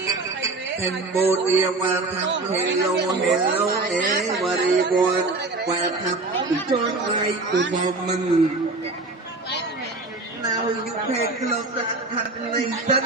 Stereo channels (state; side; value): quieter; left; 3.3 dB